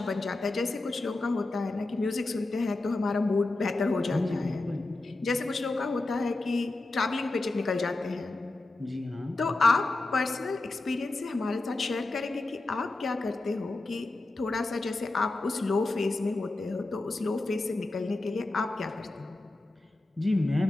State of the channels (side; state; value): right; quieter; 3.0 dB